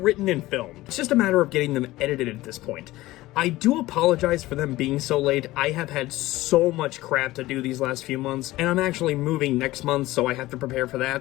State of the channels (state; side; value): quieter; right; 17.8 dB